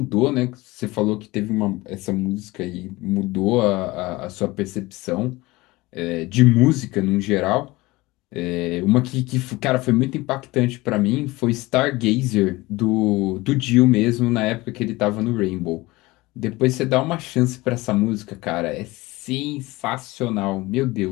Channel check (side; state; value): right; quieter; 20.9 dB